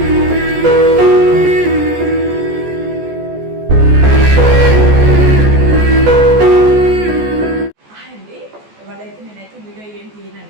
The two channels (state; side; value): late; left; 14 ms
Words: అండి ఇవాళైతే నేనైతే వీడియో ఏం